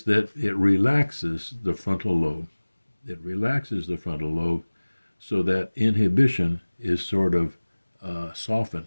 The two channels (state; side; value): inverted; both; correlation -1.00